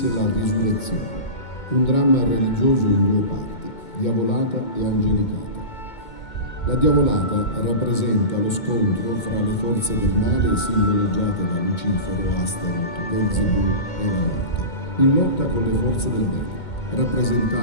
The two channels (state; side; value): late; right; 2.2 ms